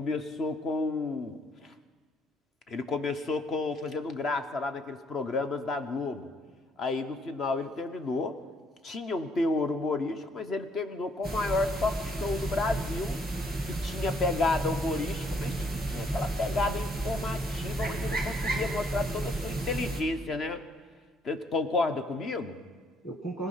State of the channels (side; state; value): both; normal; correlation 0.68